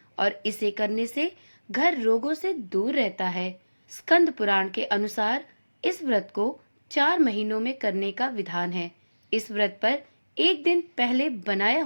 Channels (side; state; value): both; inverted; correlation -1.00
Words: और इसे करने से घर रोगों से दूर रहता है। स्कंद पुराण के अनुसार इस व्रत को 4 महीनों में करने का विधान है। इस व्रत पर एक दिन पहले बनाया